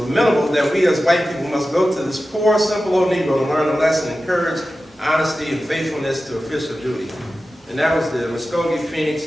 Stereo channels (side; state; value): both; normal; correlation 0.94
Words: that we as white people must go to this poor, simple old Negro to learn a lesson in courage, honesty, and faithfulness to official duty. And that was the Muskogee Phoenix,